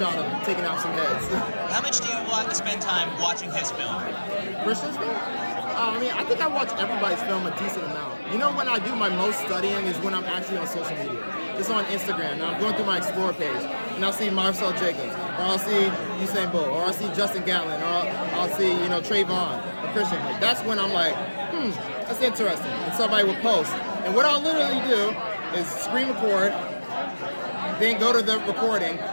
of taking out some heads. How much do you want to spend time watching his film? Christian's film? I think I watch everybody's film a decent amount. When I do my most studying is when I'm actually on social media. Just on Instagram. Now I'm going through my Explore page, and I'll see Marcel Jacobs, or I'll see Usain Bolt, or I'll see Justin Gatlin, or I'll see, Trayvon, or Christian. Like, that's when I'm like, that's interesting. And somebody will post. And what I'll literally do is screen record, then go to the recording,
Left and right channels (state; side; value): inverted; both; correlation -1.00